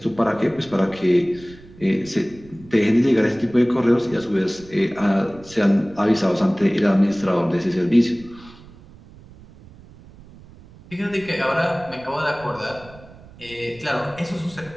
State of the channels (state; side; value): noise; right; rumble, 21 dB below the sound